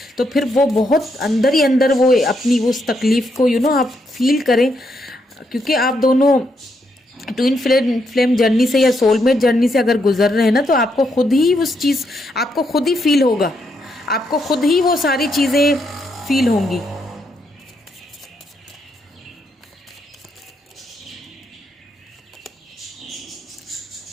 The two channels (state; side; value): normal; both; correlation 0.78